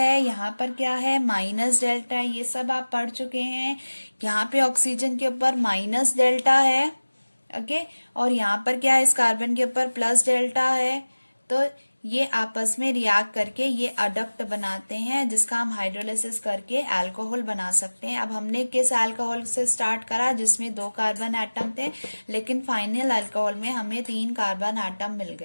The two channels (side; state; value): both; inverted; correlation -1.00